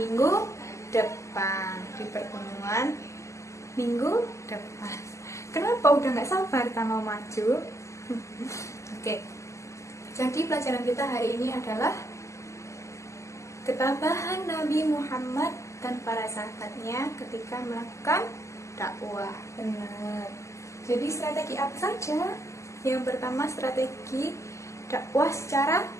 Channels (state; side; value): late; right; 0.14 ms